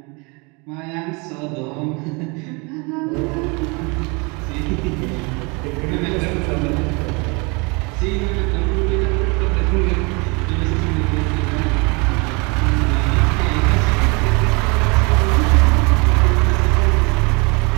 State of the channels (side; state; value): left; quieter; 29.7 dB